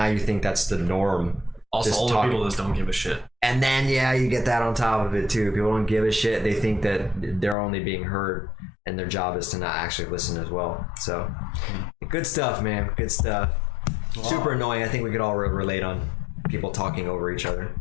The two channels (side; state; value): right; drops out; at 7.6 s